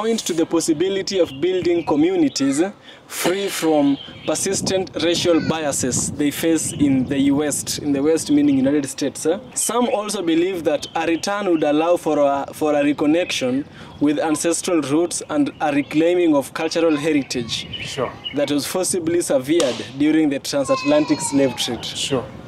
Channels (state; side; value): identical; both; correlation 1.00